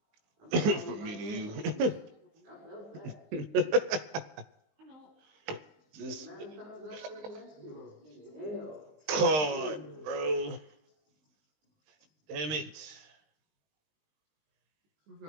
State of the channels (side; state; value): left; late; 19 ms